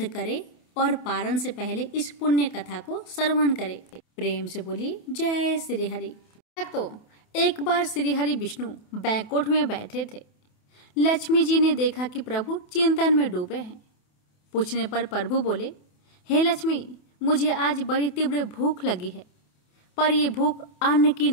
करें और पारण से पहले इस पुण्य कथा को श्रवण करें। प्रेम से बोलिए जय श्री हरि। तो एक बार श्री हरि विष्णु बैकुंठ में बैठे थे। लक्ष्मी जी ने देखा कि प्रभु चिंतन में डूबे हैं। पूछने पर प्रभु बोले, हे लक्ष्मी, मुझे आज बड़ी तीव्र भूख लगी है, पर ये भूख अन्न की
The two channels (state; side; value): late; right; 28 ms